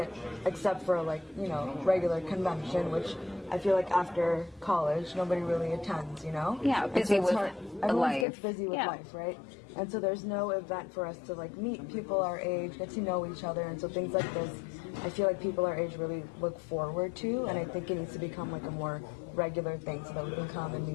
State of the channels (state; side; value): drops out; right; at 8.2 s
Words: except for like, you know, regular convention, which I feel like after college, nobody really attends, you know? Yeah, And busy it's with hard. Everyone life. gets busy with Yeah. life, right? And so there's no event for us to like meet people our age, get to know each other, and so things like this, I feel like people our age really look forward to, and I think it needs to become like a more regular thing so that we can come and